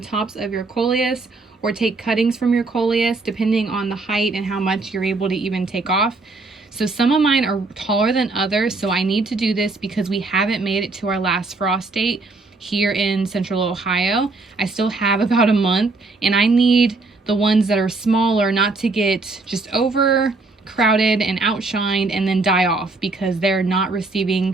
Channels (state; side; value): quieter; left; 3.5 dB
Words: of your Coleus or take cuttings from your Coleus depending on the height and how much you're able to even take off. So some of mine are taller than others, so I need to do this because we haven't made it to our last frost date here in Central Ohio. I still have about a month, and I need the ones that are smaller not to get just overcrowded and outshined and then die off because they're not